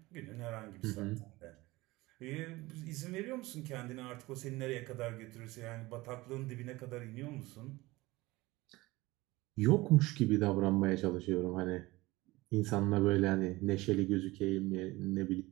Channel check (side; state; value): left; quieter; 20.3 dB